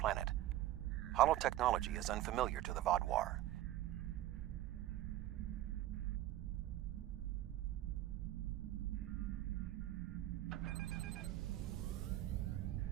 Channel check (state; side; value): quieter; left; 14.5 dB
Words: Holotechnology is unfamiliar to the Vaadwaur.